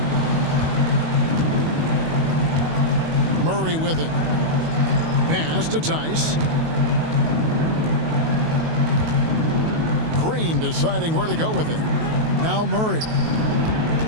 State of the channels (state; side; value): late; left; 19 ms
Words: Murray with it. Pass to Tice. Green deciding where to go with it. Now Murray.